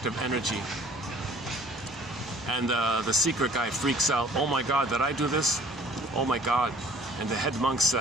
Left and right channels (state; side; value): noise; left; rumble, 25 dB below the sound